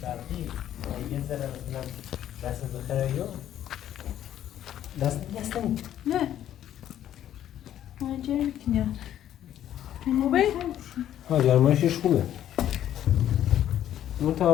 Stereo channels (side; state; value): right; quieter; 11.3 dB